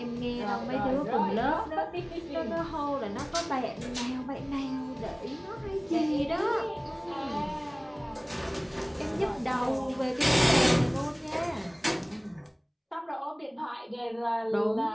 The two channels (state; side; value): identical; both; correlation 1.00